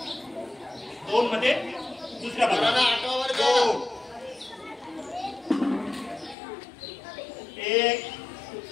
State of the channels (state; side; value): drops out; right; at 6.4 s